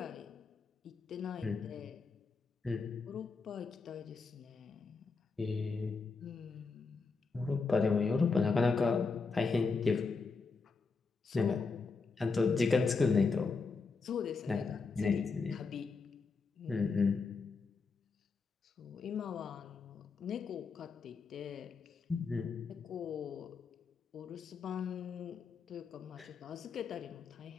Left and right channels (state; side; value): quieter; right; 4.6 dB